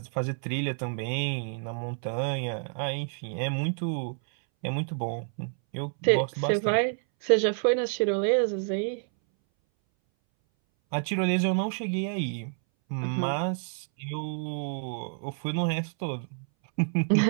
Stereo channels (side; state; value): left; silent; 59 dB below the other